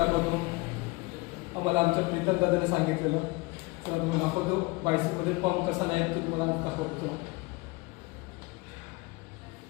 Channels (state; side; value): quieter; right; 24.6 dB